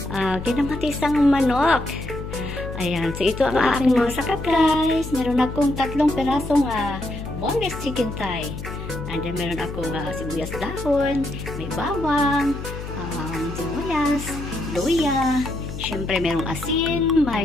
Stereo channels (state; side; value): noise; left; hum, 8 dB below the sound